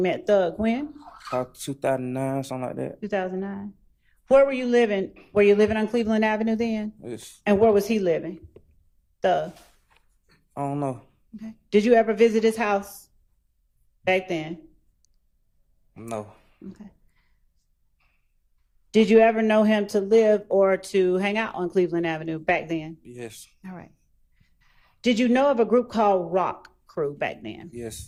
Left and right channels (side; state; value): both; identical; correlation 1.00